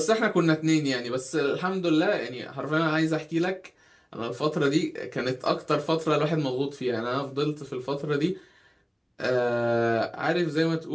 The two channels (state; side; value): identical; both; correlation 1.00